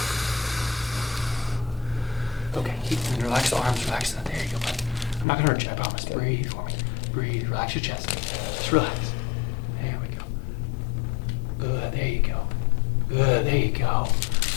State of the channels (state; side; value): drops out; right; at 5.2 s